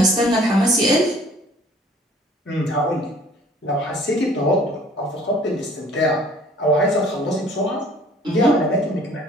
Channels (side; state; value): both; normal; correlation 0.53